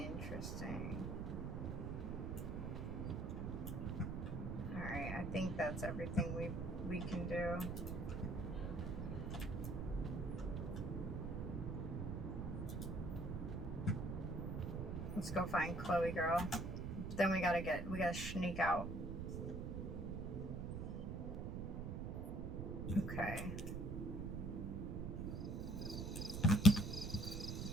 Alright, I think that's everything we can do. Let's go find Chloe, girl. Then we gotta sneak out. Okay.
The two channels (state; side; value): noise; right; rumble, 3 dB below the sound